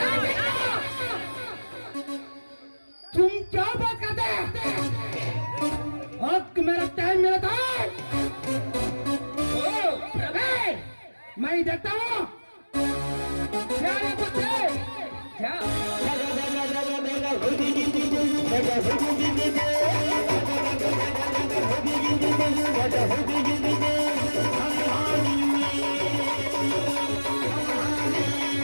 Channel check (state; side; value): inverted; both; correlation -1.00